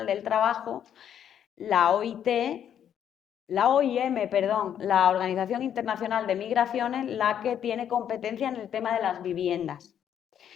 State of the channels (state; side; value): quieter; right; 9.4 dB